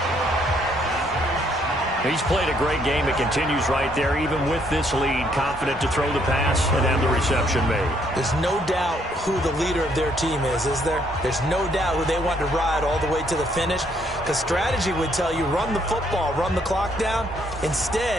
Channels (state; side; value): normal; both; correlation 0.69